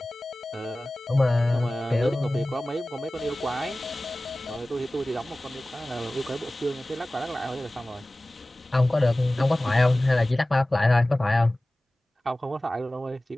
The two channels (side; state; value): both; normal; correlation 0.97